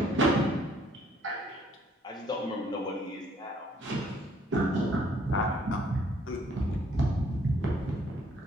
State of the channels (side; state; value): both; normal; correlation 0.64